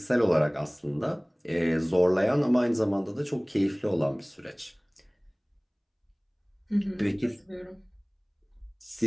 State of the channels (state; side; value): identical; both; correlation 1.00